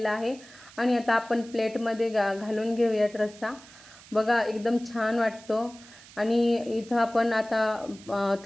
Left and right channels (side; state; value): right; noise; hiss, 21 dB below the sound